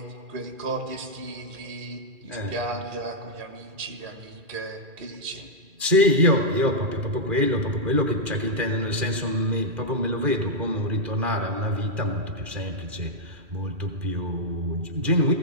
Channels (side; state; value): left; late; 2.4 ms